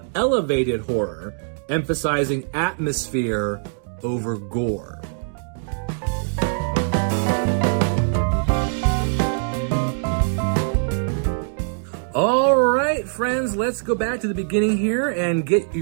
elevated horror, emphasizing atmosphere over gore? All right, friends, let's go back to the beginning here and get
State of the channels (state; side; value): silent; left; digital silence